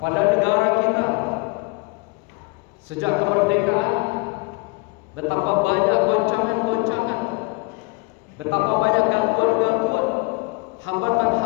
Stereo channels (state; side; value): quieter; right; 27.1 dB